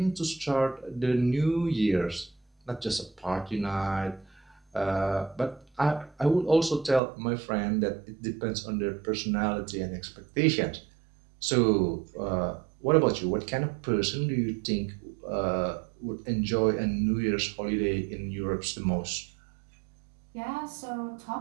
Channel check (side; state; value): left; drops out; at 7.0 s